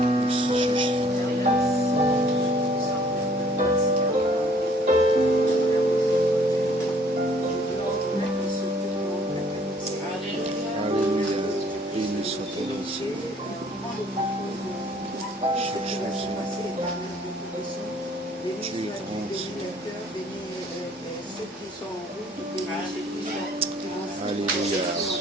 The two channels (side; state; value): both; normal; correlation 0.59